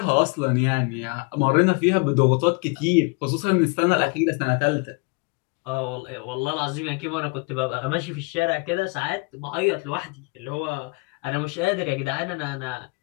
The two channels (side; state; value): right; quieter; 30.3 dB